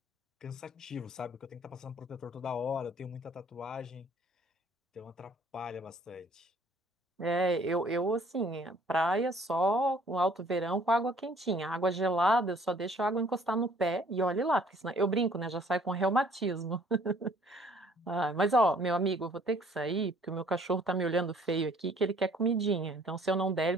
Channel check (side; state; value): both; normal; correlation 0.58